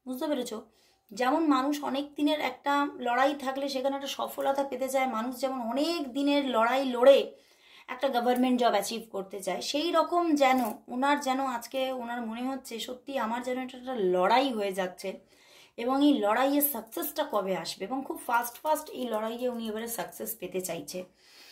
বুঝতে পেরেছো? যেমন মানুষ অনেক দিনের একটা লড়াই থাকলে সেখানে একটা সফলতা পেতে চায়, মানুষ যেমন অনেক দিনের লড়াই লড়ে একটা গভর্নমেন্ট জব অ্যাচিভ করতে চায়, সেই রকম যেন ওনার যেন আজকে ওনার মনে হচ্ছে সত্যি আমার যেন এটা একটা লড়াই হয়ে যাচ্ছে, এবং এই লড়াইয়ের সাকসেসটা কবে আসবে, এবং খুব ফাস্ট এই লড়াইয়ে উনি এবারে সাকসেস পেতে চাইছে।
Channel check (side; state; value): both; identical; correlation 1.00